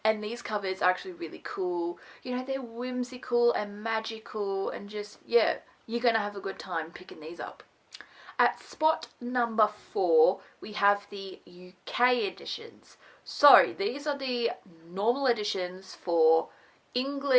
And these covers are actually really cool. You know, they're whimsical and magical and just, yeah, you're going to have a good time picking these up. At spot number 4, we have the UK editions. So these are the normal editions for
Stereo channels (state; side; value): identical; both; correlation 1.00